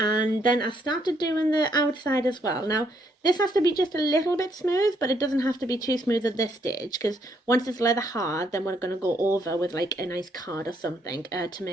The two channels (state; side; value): normal; both; correlation 0.72